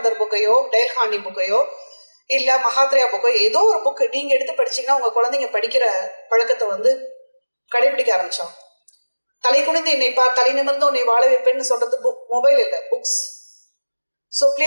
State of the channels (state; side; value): inverted; both; correlation -1.00